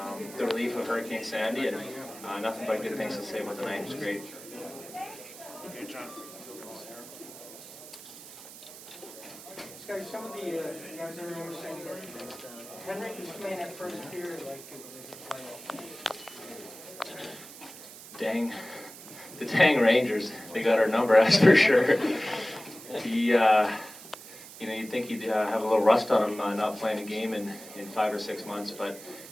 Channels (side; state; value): right; noise; hiss, 16 dB below the sound